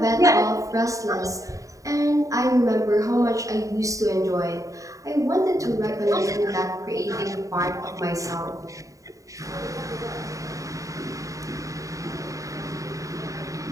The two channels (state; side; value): late; left; 0.16 ms